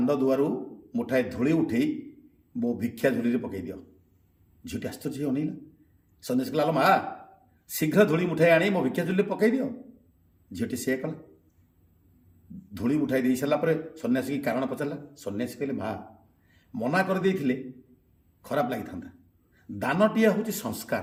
ଦୁଆରୁ ମୁଠାଏ ଧୂଳି ଉଠେଇ ମୋ ଭିକ୍ଷା ଝୁଲିରେ ପକାଇ ଦିଅ। ଝିଅଟି ଆଶ୍ଚର୍ଯ୍ୟ ହେଇ ଅନେଇଲା। ସନ୍ନ୍ୟାସୀ କହିଲା ମା ଶୀଘ୍ର ଧୂଳି ମୁଠାଇ ଆଣି ମୋ ଭିକ୍ଷା ଝୁଲିରେ ପକାଇ ଦିଅ। ଝିଅଟି ସେୟା କଲା। ଧୂଳି ଉଠାଇ ଦେଇ ସାରିଲା ପରେ ସନ୍ନ୍ୟାସୀ କାରଣ ପଚାରିଲା। ସନ୍ନ୍ୟାସୀ କହିଲେ ମା ମନା କରିଦେଇଥିଲେ ଖରାପ ଲାଗିଥାନ୍ତା। ଦାନଟିଏ ହେଉଛି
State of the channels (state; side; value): identical; both; correlation 1.00